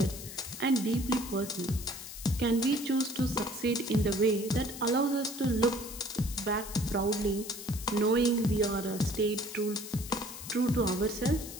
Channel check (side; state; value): left; noise; hiss, 11 dB below the sound